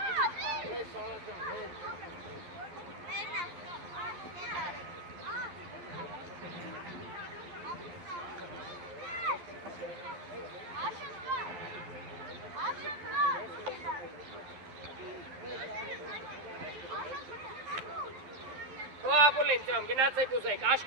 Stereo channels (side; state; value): left; late; 11 ms